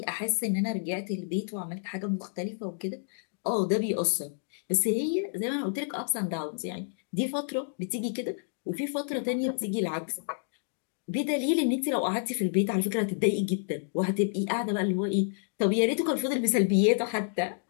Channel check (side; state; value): right; silent; digital silence